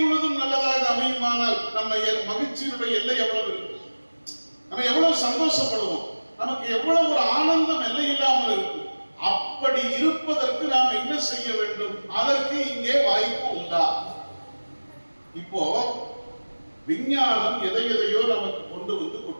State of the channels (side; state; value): both; inverted; correlation -1.00